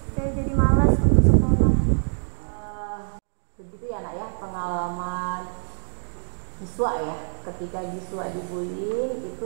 saya jadi malas untuk sekolah. Begitu ya nak ya, pengalaman Giswa ya. Ketika Giswa dibully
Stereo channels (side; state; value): left; silent; digital silence